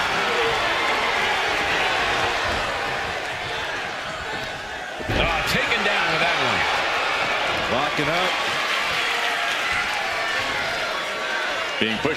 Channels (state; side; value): identical; both; correlation 1.00